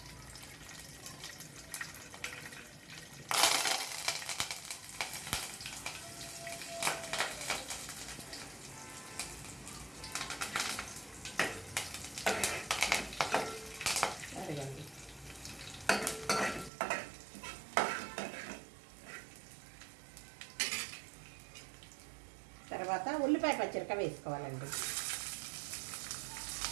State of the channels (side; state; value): left; drops out; at 16.7 s